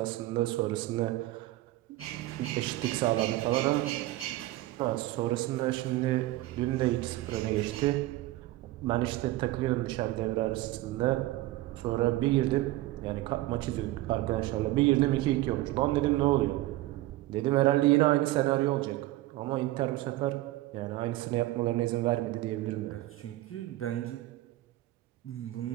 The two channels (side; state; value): left; quieter; 17.2 dB